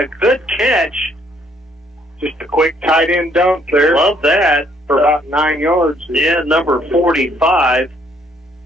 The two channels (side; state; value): both; normal; correlation 0.66